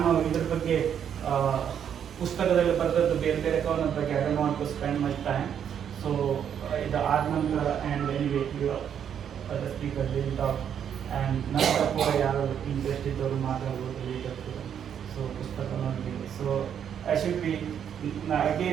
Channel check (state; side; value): quieter; left; 8.6 dB